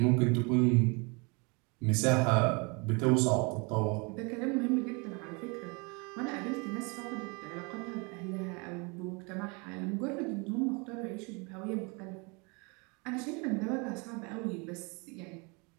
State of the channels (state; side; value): quieter; left; 30.6 dB